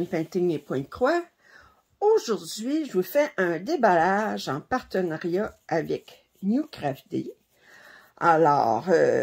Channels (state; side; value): identical; both; correlation 1.00